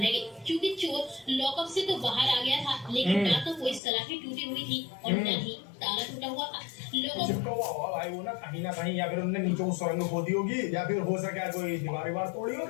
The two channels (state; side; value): drops out; right; at 3.8 s